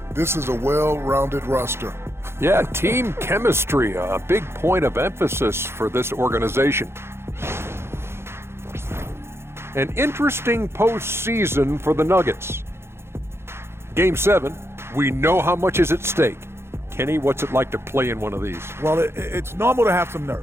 This is a well-rounded roster. Yeah, team chemistry, a big point of emphasis for this organization. An interesting postseason for the Nuggets. Game 7. We know how much is at stake. Kenny, what's it like to play in one of these? Well, it's normal to have some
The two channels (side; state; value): left; late; 0.12 ms